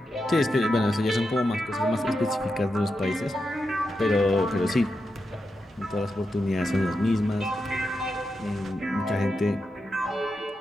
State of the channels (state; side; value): normal; both; correlation 0.87